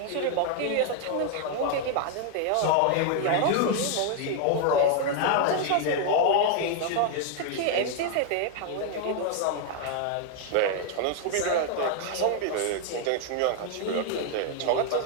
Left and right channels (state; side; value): different; both; correlation 0.00